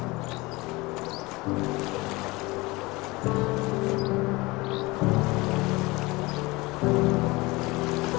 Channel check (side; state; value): right; quieter; 22.9 dB